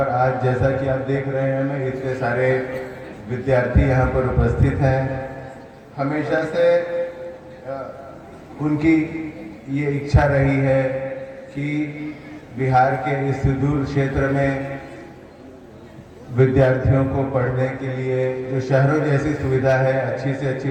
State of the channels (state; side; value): identical; both; correlation 1.00